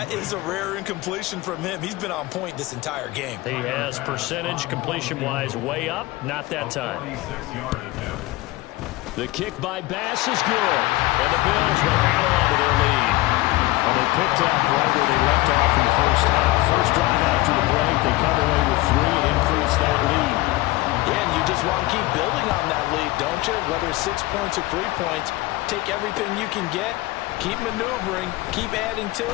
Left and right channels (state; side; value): quieter; right; 19.2 dB